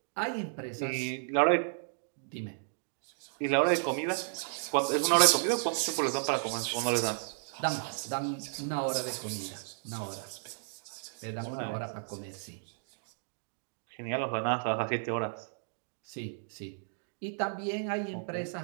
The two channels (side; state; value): left; silent; digital silence